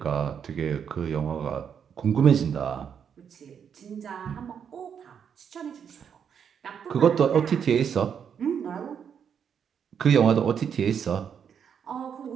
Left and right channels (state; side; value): quieter; left; 7.7 dB